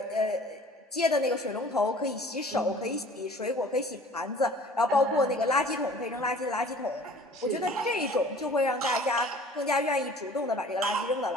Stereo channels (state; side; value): normal; both; correlation 0.48